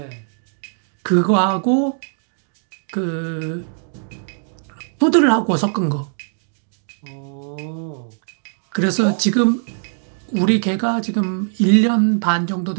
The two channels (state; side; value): silent; left; digital silence